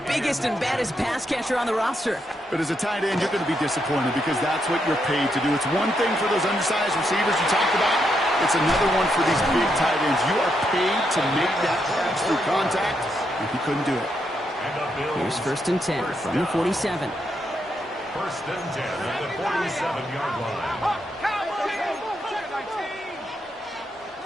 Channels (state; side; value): normal; both; correlation 0.80